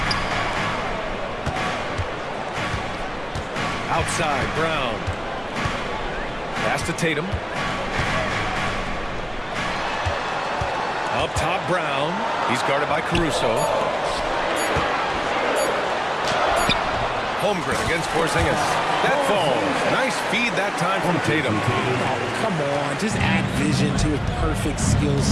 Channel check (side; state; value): both; identical; correlation 1.00